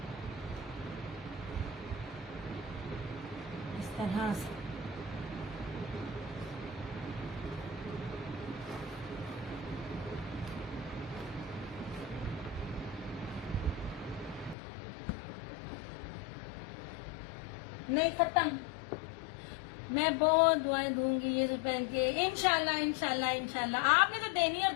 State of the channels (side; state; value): right; drops out; at 14.6 s